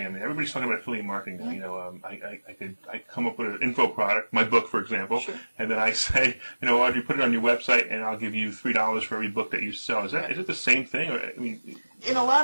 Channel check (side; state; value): both; inverted; correlation -1.00